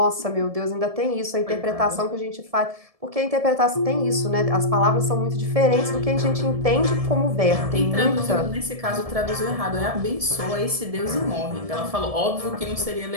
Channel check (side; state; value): left; late; 1.7 ms